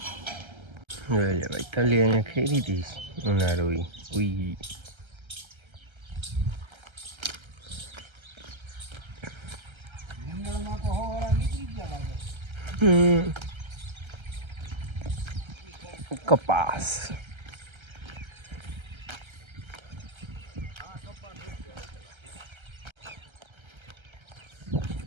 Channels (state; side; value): late; left; 1.3 ms